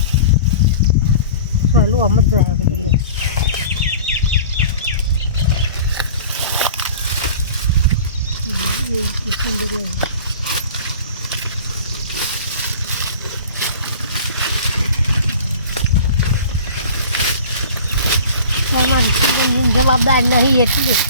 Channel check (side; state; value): both; inverted; correlation -0.41